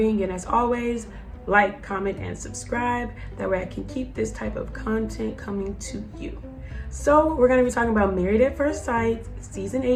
And as always, like, comment, and subscribe. That way I can keep this type of content coming to you. So we're going to be talking about Married at First Sight, season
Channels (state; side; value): identical; both; correlation 1.00